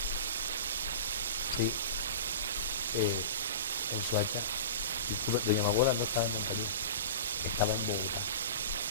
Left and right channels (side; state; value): both; inverted; correlation -0.32